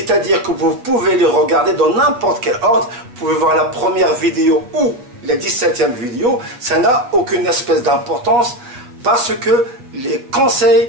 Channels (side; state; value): left; late; 8.2 ms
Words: que vous pouvez les regarder dans n'importe quel ordre. Vous pouvez voir la première vidéo ou la 17e vidéo, ça n'a aucune espèce d'importance parce que les